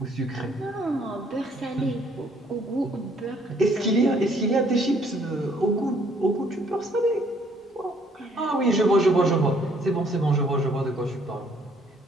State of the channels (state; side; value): normal; both; correlation 0.64